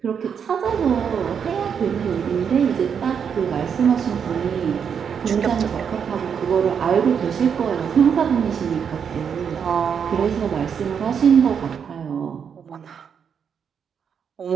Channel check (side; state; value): left; quieter; 7.2 dB